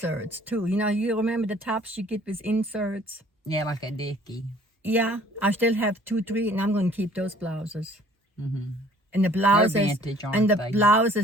too. You know, you remember the tops you get with inserts? Yeah, like a dickie. Yeah, I still have 2, 3, and I'm going to keep those blouses. Mm-hmm. And the blouses, They're vintage, aren't they?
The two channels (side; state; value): both; normal; correlation 0.55